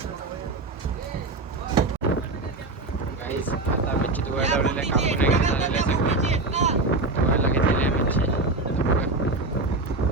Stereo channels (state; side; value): quieter; left; 3.1 dB